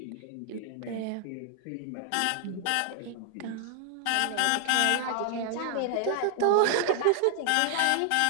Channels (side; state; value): both; different; correlation 0.00